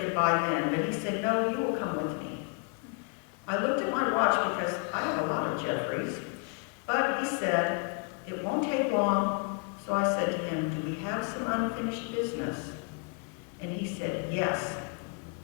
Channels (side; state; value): right; quieter; 36.2 dB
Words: goodbye then, but he said, "No, you will come with me." I looked at my watch because I have a lot of Jeffreys, but he said, "It won't take long." So I said to him, "Do we have some unfinished business?" And he said, "Yes."